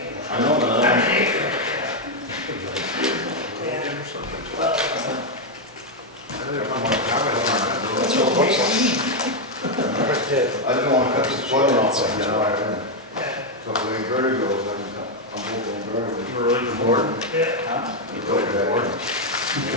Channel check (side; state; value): both; normal; correlation 0.02